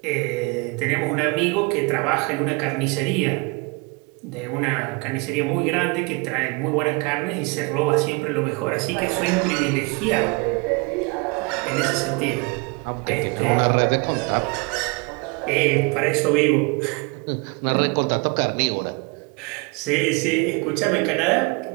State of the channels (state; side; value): quieter; left; 28.2 dB